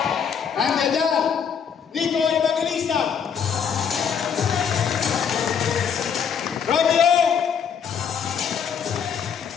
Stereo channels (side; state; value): right; quieter; 7.3 dB